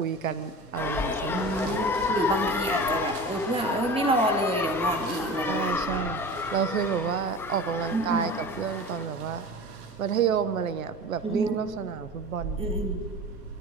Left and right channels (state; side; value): normal; both; correlation 0.35